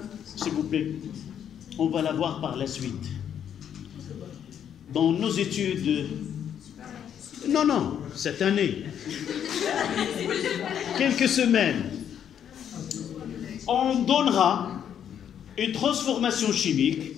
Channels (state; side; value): quieter; right; 9.1 dB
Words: s'il vous plaît, on va la voir par la suite. Dans nos études, non, cette année, quelques semaines, on donnera une transformation chimique.